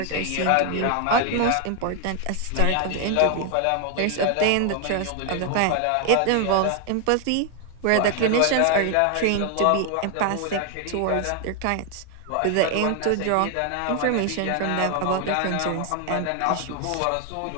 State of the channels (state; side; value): different; both; correlation 0.00